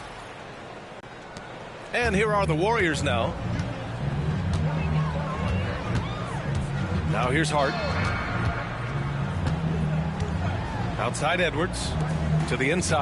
And here are the Warriors now. Now here's Hart. Outside Edwards. To the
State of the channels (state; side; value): identical; both; correlation 1.00